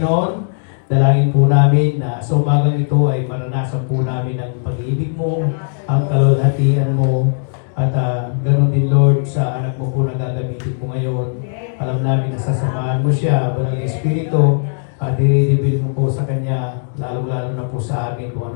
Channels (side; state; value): right; silent; 68 dB below the other